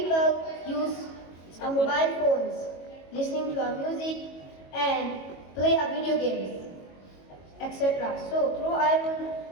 people use a mobile phones, listening to a music and play a video games, etc. So through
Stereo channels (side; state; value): right; late; 22 ms